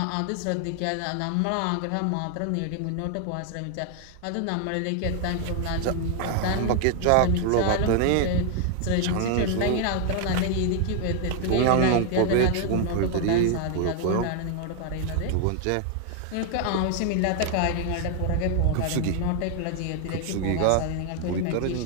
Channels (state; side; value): different; both; correlation 0.00